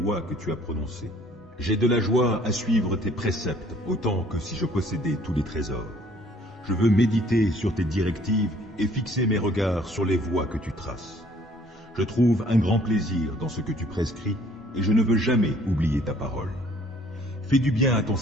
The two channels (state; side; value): normal; both; correlation 0.58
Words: que tu as prononcées. J'ai de la joie à suivre tes préceptes, autant que si je possédais tous les trésors. Je veux méditer sur tes directives et fixer mes regards sur les voies que tu traces. Je trouve un grand plaisir dans ce que tu prescris, et je ne veux jamais oublier ta parole. Fais du bien à ton